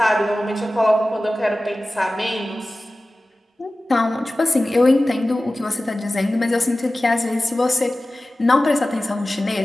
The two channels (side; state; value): both; normal; correlation 0.96